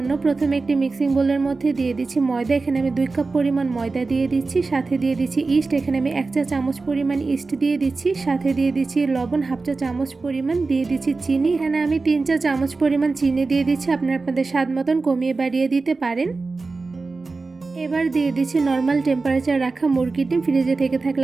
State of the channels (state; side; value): quieter; left; 3.8 dB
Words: প্রথমে একটি মিক্সিং বোলের মধ্যে দিয়ে দিচ্ছি ময়দা। এখানে আমি 2 কাপ পরিমাণ ময়দা দিয়ে দিচ্ছি। সাথে দিয়ে দিচ্ছি ইস্ট। এখানে আমি 1 চা চামচ পরিমাণ ইস্ট দিয়ে দিচ্ছি। সাথে দিয়ে দিচ্ছি লবণ 1/2 চা চামচ পরিমাণ, দিয়ে দিচ্ছি চিনি। এখানে আমি 3 চা চামচ পরিমাণ চিনি দিয়ে দিচ্ছি। আপনারা আপনাদের স্বাদ মতন কমিয়ে বাড়িয়ে দিতে পারেন। এবার দিয়ে দিচ্ছি নর্মাল টেম্পারেচার রাখা মুরগির ডিম, ফ্রিজে থেকে